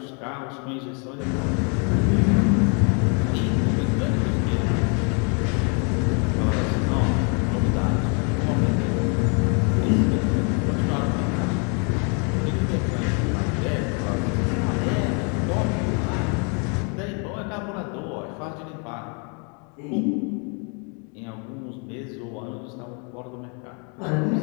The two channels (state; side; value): quieter; right; 36.8 dB